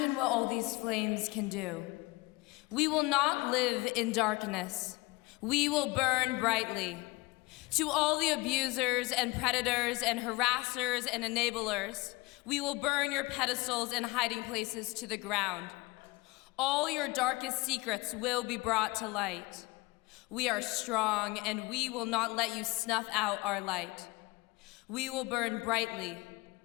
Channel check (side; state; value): right; quieter; 23.0 dB